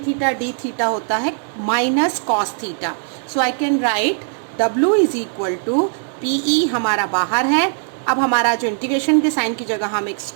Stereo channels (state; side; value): silent; left; 57 dB below the other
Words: theta d theta होता है minus cos theta. So I can write W is equal to PE हमारा बाहर है। अब हमारा जो इंटीग्रेशन के साइन की जगह हम एक